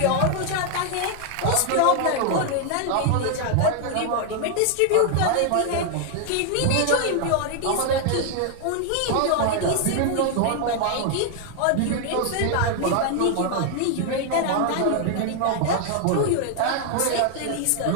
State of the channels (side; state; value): both; different; correlation 0.00